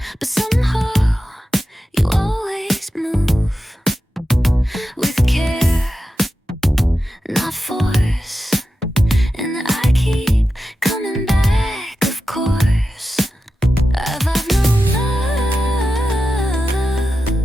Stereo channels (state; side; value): normal; both; correlation 0.91